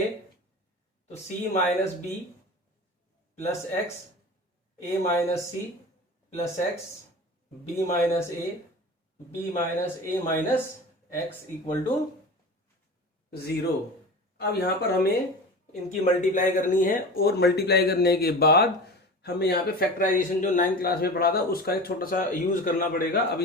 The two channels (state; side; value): normal; both; correlation 0.33